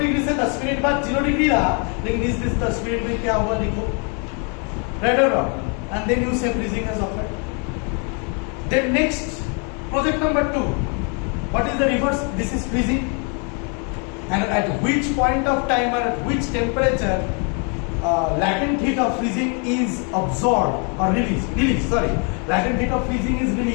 से 10 minute बाद 0 degree रहा, लेकिन इस 10 मिनट में क्या हुआ लिखो, right or wrong? And then you say freezing has occurred. Then next, project number 2. What is the reverse? This is freezing. And at which point of time or at which temperature latent heat of freezing is absorbed or released. Sorry, latent heat of freezing is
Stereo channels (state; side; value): quieter; right; 37.0 dB